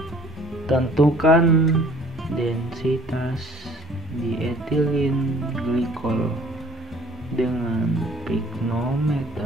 Tentukan densitas dietilen glikol dengan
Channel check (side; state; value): both; normal; correlation 0.55